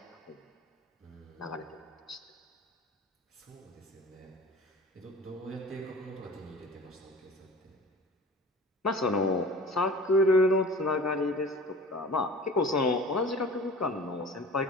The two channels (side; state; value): both; normal; correlation 0.41